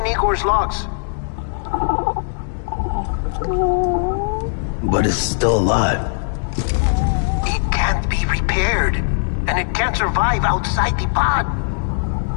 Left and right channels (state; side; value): silent; right; digital silence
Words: Igor's logs. But it's still alive. It can't be repaired, and it can't survive outside the pod.